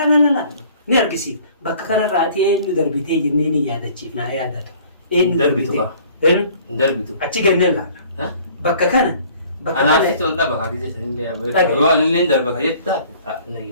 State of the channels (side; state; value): both; inverted; correlation -0.53